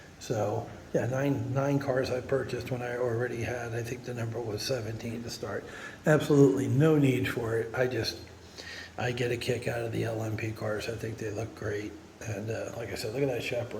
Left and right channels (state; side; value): identical; both; correlation 1.00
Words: So, 9 cars I purchased when I already had, I think the number was 17 to start. Absolutely no need for it. I get a kick out of the LMP cars. I think they look great. And like I said, look at that